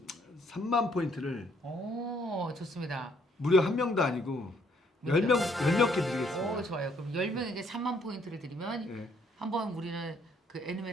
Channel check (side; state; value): both; normal; correlation 0.67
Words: 3만 포인트를 오 좋습니다. 무려 한 명도 아니고 10개 드리겠습니다. 오 좋아요. 그럼 10명 이제 3만 포인트를 드리면 예. 한번 우리는 그